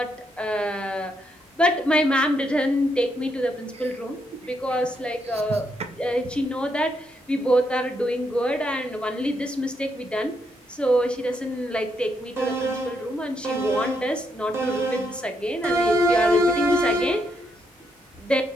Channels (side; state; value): both; normal; correlation 0.78